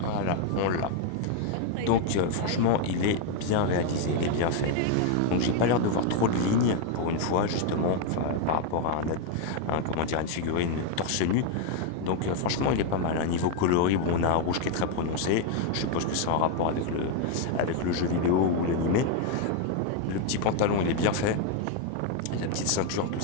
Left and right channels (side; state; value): both; different; correlation 0.01